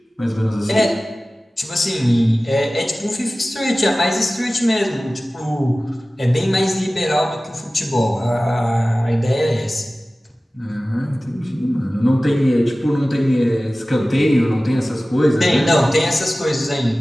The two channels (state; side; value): normal; both; correlation 0.97